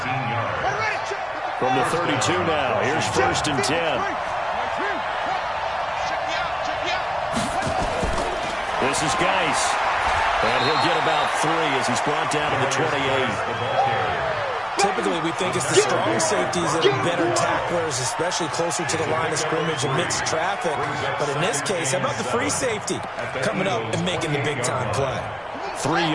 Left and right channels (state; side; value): identical; both; correlation 1.00